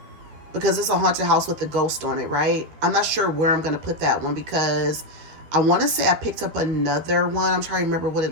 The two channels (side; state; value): left; late; 12 ms